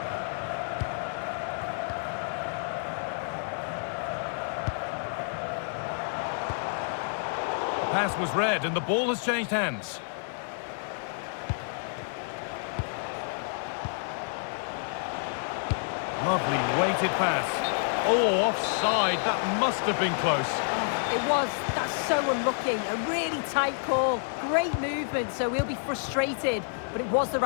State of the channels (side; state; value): right; silent; digital silence